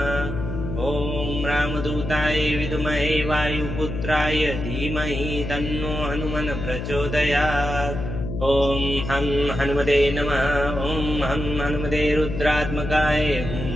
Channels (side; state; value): left; noise; hum, 6 dB below the sound